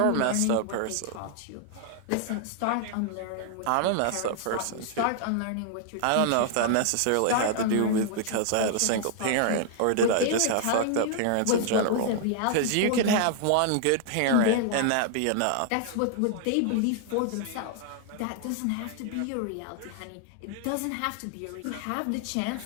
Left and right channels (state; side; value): different; both; correlation 0.00